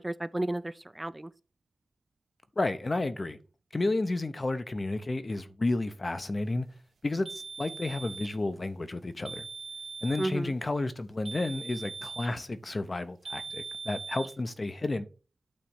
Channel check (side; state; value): both; normal; correlation 0.97